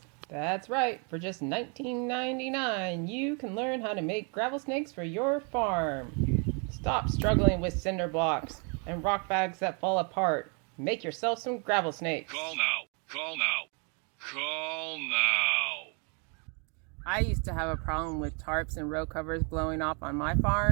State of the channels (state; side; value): quieter; left; 36.9 dB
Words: That's right, for just $19.99, you can learn how to make gravel snakes for your farm. Stop struggling with cinder blocks and rock bags that fall apart. Make yourself some gravel snakes. Call now. Call now. Call now. I used to have a problem with tarps and row covers blowing off on my